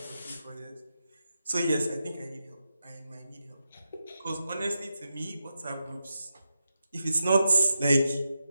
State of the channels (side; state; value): both; inverted; correlation -0.88